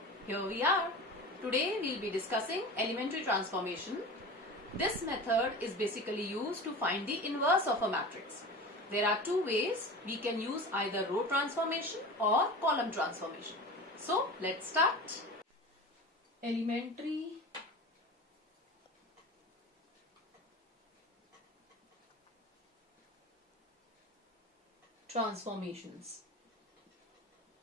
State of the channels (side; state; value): both; normal; correlation 0.33